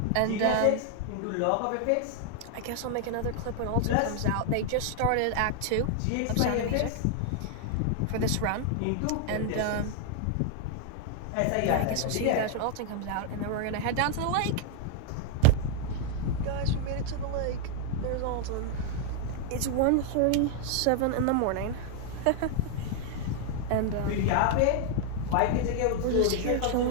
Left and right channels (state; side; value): different; both; correlation 0.00